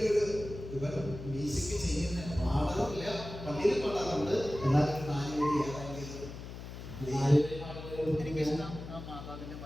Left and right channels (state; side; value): noise; left; hum, 11 dB below the sound